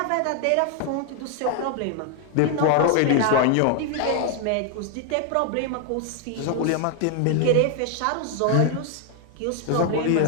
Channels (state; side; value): different; both; correlation 0.00